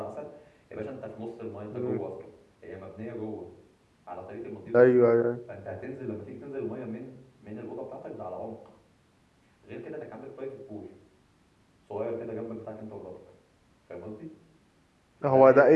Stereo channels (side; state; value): both; identical; correlation 1.00